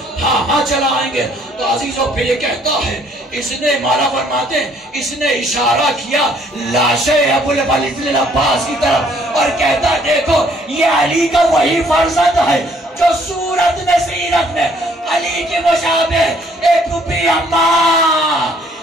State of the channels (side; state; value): both; normal; correlation 0.63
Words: हाँ चलाएंगे। तो अजीजों पे ये कहता है, इसने मारा फरमाते, इसने इशारा किया लाशे अबुल वलीद अब्बास की तरफ और कहता देखो ये अली का वही फर्जंद है जो सूरत में सीरत में अली के मुशाबे। ए फूफी अम्मा